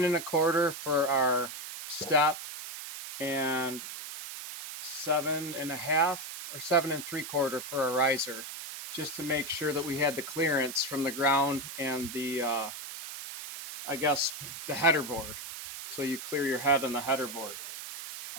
and a quarter for our step and 7.5 or 7 3/4 for a riser, just to make sure that we had the clearance from the ground and the I guess the header board, so you clear your head on the header board.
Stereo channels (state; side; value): noise; right; hiss, 9 dB below the sound